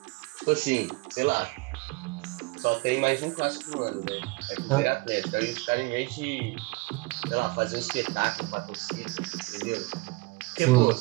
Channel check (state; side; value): quieter; left; 24.6 dB